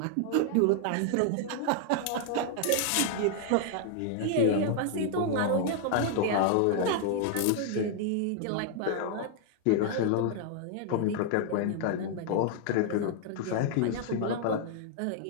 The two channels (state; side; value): different; both; correlation 0.00